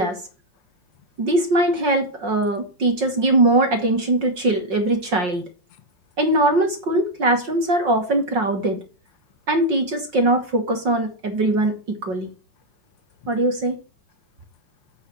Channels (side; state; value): left; late; 5.5 ms